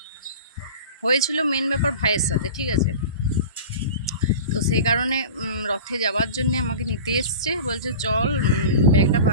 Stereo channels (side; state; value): both; inverted; correlation -0.35